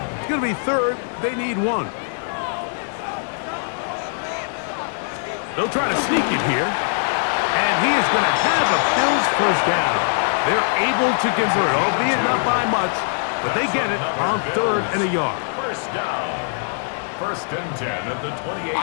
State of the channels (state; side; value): silent; right; digital silence